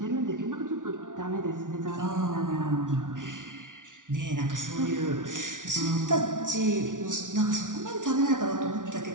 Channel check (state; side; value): late; left; 0.88 ms